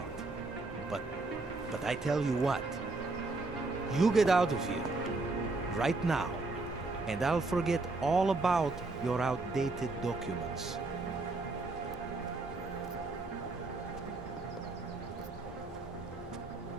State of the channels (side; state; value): left; quieter; 3.4 dB